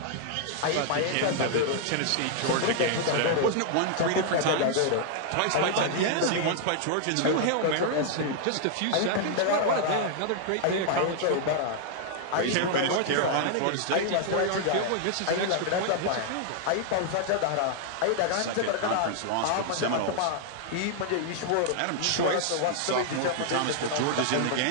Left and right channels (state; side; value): different; both; correlation 0.00